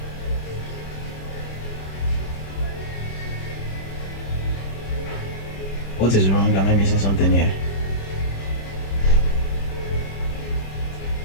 What is wrong? Am I missing something here?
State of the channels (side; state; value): right; late; 26 ms